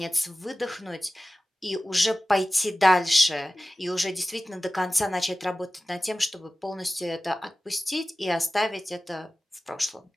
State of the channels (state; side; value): normal; both; correlation 0.96